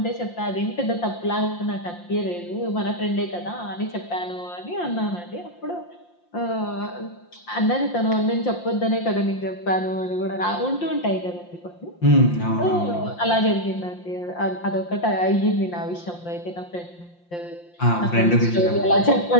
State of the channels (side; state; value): right; late; 5.7 ms